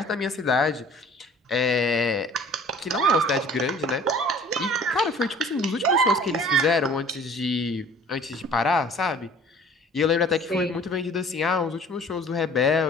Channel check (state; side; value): normal; both; correlation 0.50